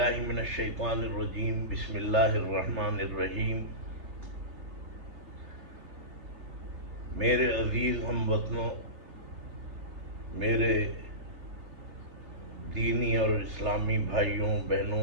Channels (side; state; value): left; late; 3.3 ms